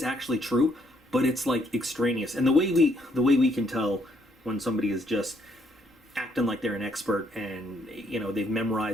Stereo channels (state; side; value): normal; both; correlation 0.70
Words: actually true, but it's like extraneous. And the way we can tell when somebody is just acting like they're an expert and they've